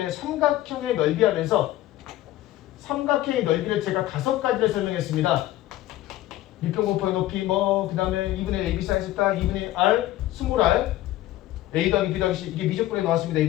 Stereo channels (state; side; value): quieter; right; 15.1 dB